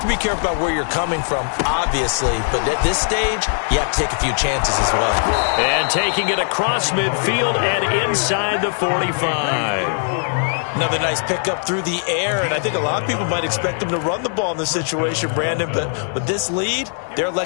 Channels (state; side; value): silent; right; digital silence